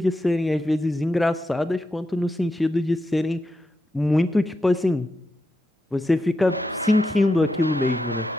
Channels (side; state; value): both; normal; correlation 0.86